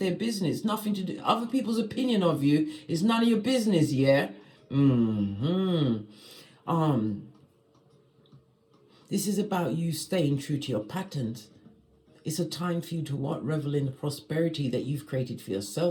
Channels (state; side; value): identical; both; correlation 1.00